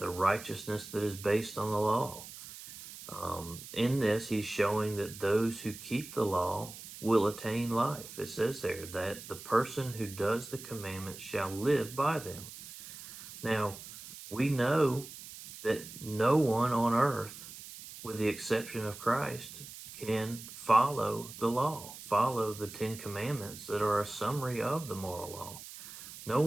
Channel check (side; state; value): right; noise; hiss, 14 dB below the sound